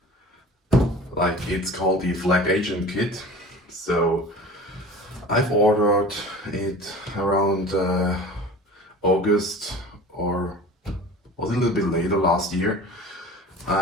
Like, it's called the Flag Agent Kit. So I've ordered it around August, or was a little bit later last year,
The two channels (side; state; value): both; normal; correlation 0.40